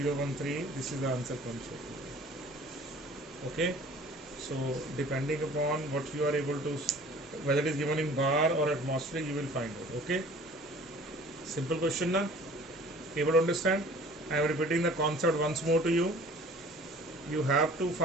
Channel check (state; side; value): normal; both; correlation 0.48